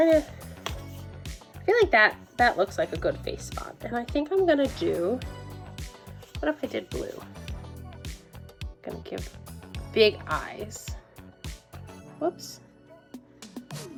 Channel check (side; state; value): both; identical; correlation 1.00